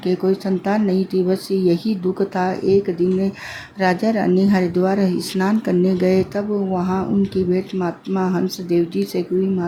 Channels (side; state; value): both; identical; correlation 1.00